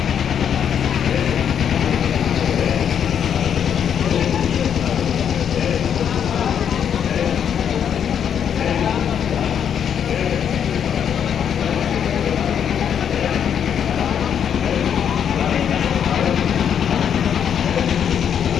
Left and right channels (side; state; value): right; quieter; 8.4 dB